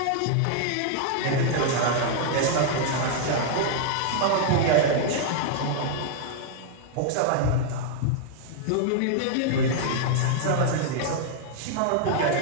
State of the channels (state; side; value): different; both; correlation 0.00